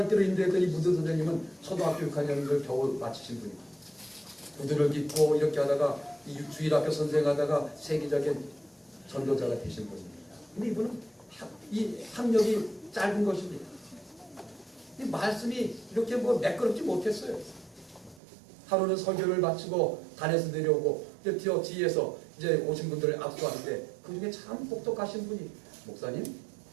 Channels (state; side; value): drops out; left; at 18.2 s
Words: 인도했던 이 무디 선생님은 초등학교 6학년을 겨우 마치신 분입니다. 구두를 깃고 이렇게 하다가 이 주일학교 선생하다가 세계적인 전도자가 되신 분입니다. 근데 이분은 이 학력이 짧은 것입니다. 이 말씀이 이렇게 매끄럽지 못했어요. 하루는 설교를 마치고 단에서 내려오고 뒤에서 이제 오신 분들을 압수하는데 그 중에 참 똑똑하신 분이 목사님,